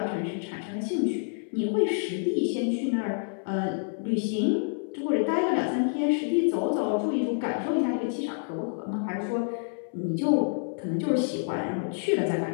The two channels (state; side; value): silent; right; 59 dB below the other